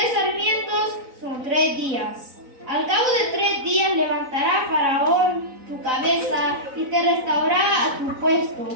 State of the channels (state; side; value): late; left; 4.0 ms